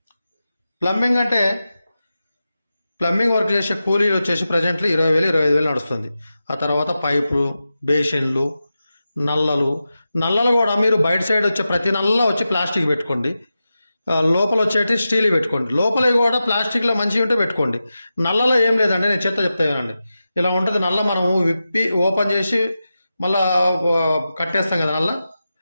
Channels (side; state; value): both; inverted; correlation -0.92